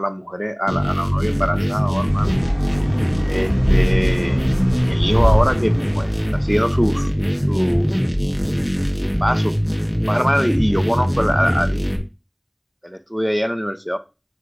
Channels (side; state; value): both; identical; correlation 1.00